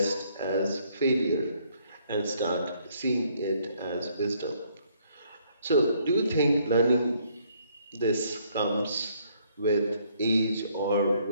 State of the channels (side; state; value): both; inverted; correlation -0.66